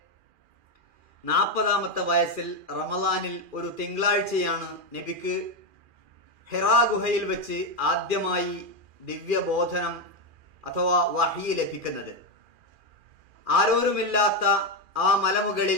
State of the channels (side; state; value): left; late; 2.4 ms